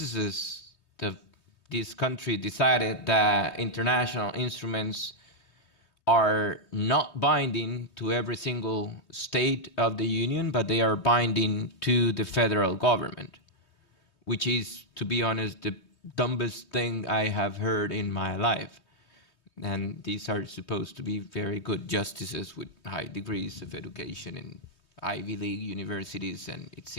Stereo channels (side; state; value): right; late; 3.2 ms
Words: of this country decided that international instruments are not binding to every single state of the Union, but they are binding to the federal government, which is, to be honest, the dumbest thing I have heard in my life. And these are supposed to be very good justices with high degrees of education in Ivy League universities, and it